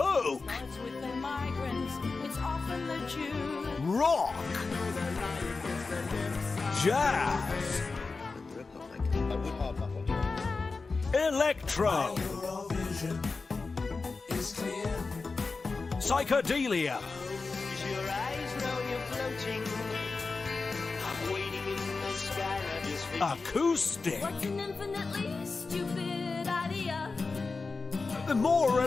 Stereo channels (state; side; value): quieter; right; 4.1 dB